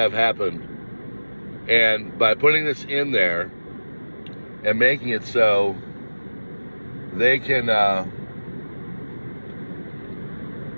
happened. And by putting this in there and making it so they can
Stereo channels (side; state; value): both; inverted; correlation -1.00